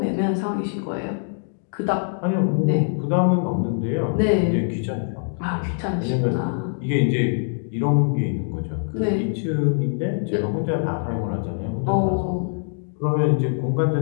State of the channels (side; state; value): right; silent; digital silence